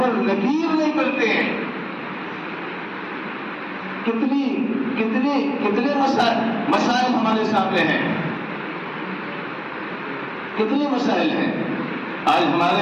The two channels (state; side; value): identical; both; correlation 1.00